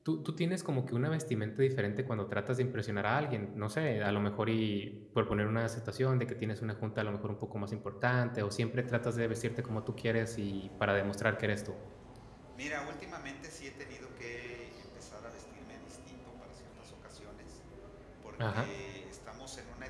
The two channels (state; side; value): identical; both; correlation 1.00